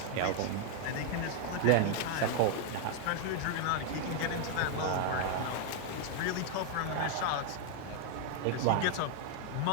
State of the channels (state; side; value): different; both; correlation 0.00